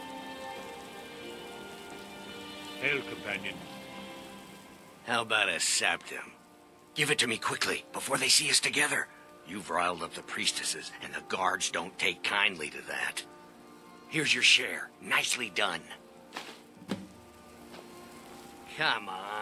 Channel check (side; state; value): both; identical; correlation 1.00